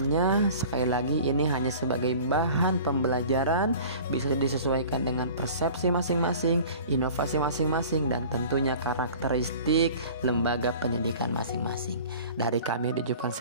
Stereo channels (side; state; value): both; inverted; correlation -0.43